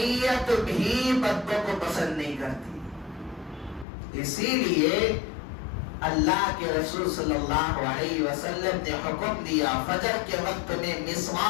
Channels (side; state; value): right; drops out; at 3.9 s